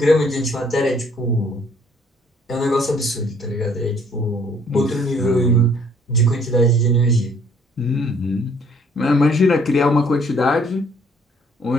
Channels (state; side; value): normal; both; correlation 0.61